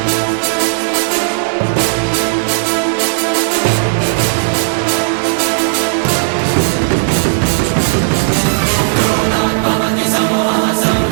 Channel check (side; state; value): left; silent; digital silence